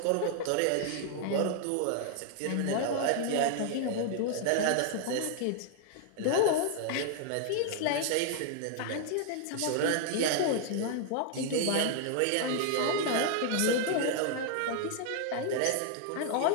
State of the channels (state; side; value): different; both; correlation 0.00